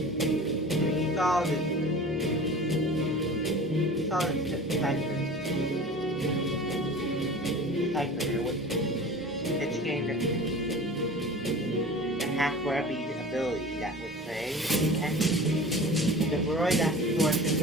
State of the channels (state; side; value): normal; both; correlation 0.39